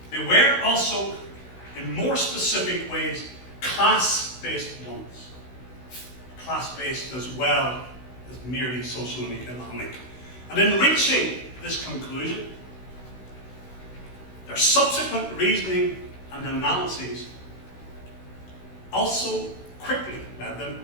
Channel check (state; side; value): late; right; 16 ms